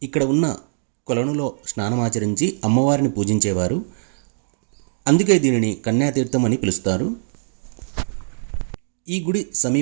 ఇక్కడ ఉన్న కొలనులో స్నానమాచరించి అమ్మవారిని పూజించేవారు. అందుకే దీనిని కన్యాతీర్థం అని పిలుస్తారు. ఈ గుడి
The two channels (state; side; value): silent; left; digital silence